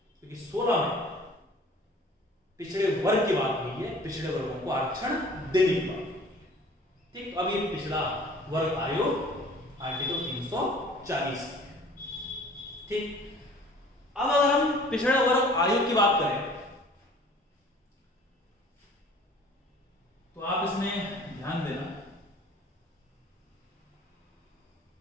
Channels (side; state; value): both; normal; correlation 0.49